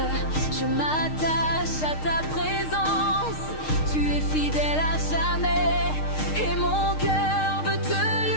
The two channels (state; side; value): late; right; 6.5 ms